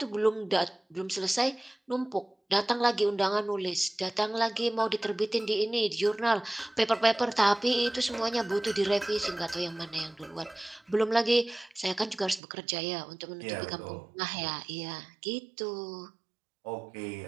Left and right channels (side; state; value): left; drops out; at 12.4 s